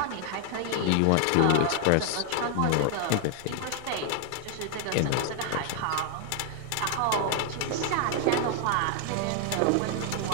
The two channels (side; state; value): both; different; correlation 0.00